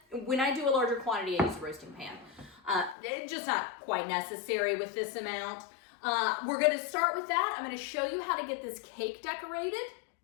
When I do a larger quantity, I use a roasting pan. It's just not quite necessary with this amount. We're gonna start with that. I'm gonna show you how to get this cake decorated.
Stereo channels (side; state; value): right; drops out; at 3.0 s